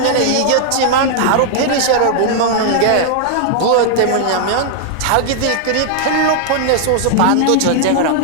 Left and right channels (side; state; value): both; different; correlation -0.01